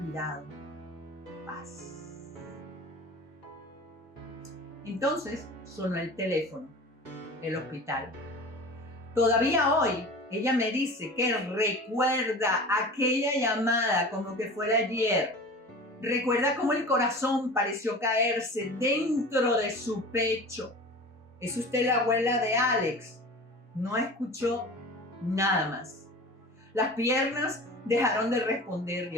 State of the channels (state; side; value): normal; both; correlation 0.37